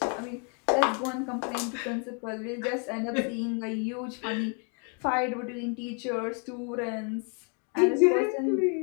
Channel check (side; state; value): right; quieter; 39.1 dB